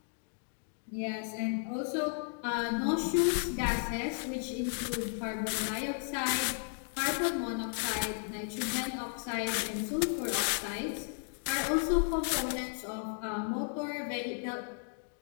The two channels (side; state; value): right; silent; 55 dB below the other